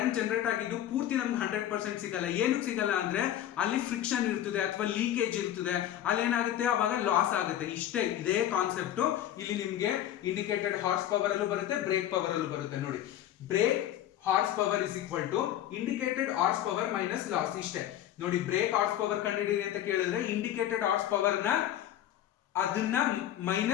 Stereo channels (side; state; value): right; quieter; 11.8 dB